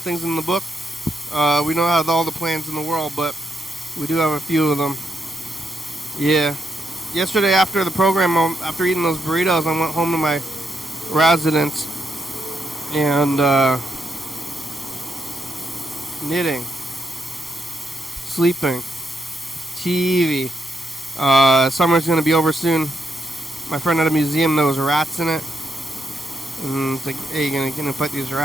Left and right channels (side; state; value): both; normal; correlation 0.80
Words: in the book. We don't have all the plans in the world, but we do have a few of them. Yeah. Yesterday after the program, after eating those burritos, I went home to my residence and knitting, sleeping, TV. Summer's going to be over soon. My friend had a museum, there was rats in it. And it's like, hey, you gonna fight these